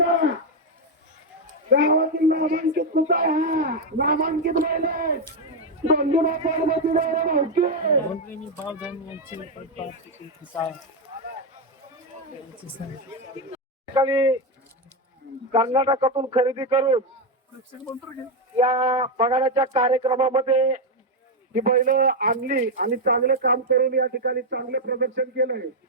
गावातील नामांकित कुठं हा नामांकित बैल गोंधळा पार्वती भाऊके कर्नाटकातून खरेदी करून या बघाण्याच्या कार्यक्रमामध्ये ही बैल आणली आणि चांगलं काम करून या ठिकाणी चांगलं प्रदर्शन केलंय.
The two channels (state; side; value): normal; both; correlation 0.05